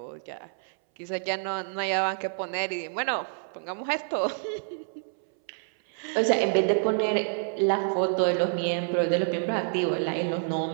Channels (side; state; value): left; silent; 59 dB below the other